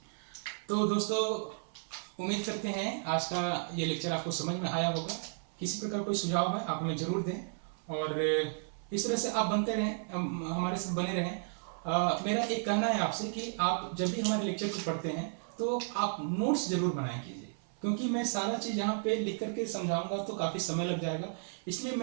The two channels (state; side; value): silent; left; 55 dB below the other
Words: तो दोस्तों उम्मीद करते हैं आज का ये लेक्चर आपको समझ में आया होगा। किसी प्रकार कोई सुझाव है आप हमें जरूर दें और इस तरह से आप बनते रहें, हमारे साथ बने रहें। मेरा एक कहना है आपसे कि आप जब भी हमारे लेक्चर को पढ़ते हैं तो आप नोट्स जरूर बनाए कीजिए, क्योंकि मैं सारा चीज़ यहाँ पे लिख करके समझाऊंगा तो काफ़ी समय लग जाएगा। इसलिए